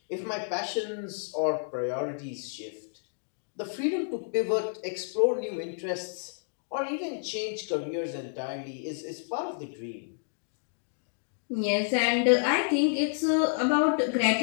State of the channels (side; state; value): right; silent; digital silence